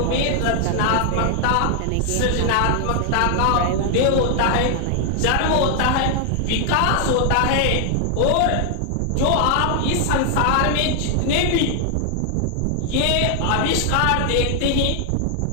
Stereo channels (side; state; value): both; different; correlation 0.00